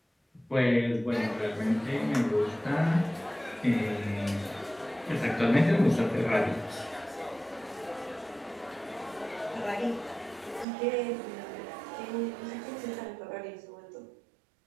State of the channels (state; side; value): drops out; left; at 10.7 s